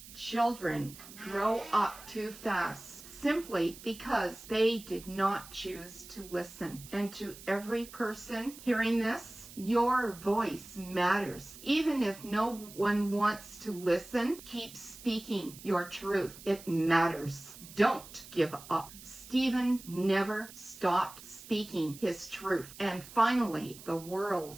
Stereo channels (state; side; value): noise; right; hiss, 17 dB below the sound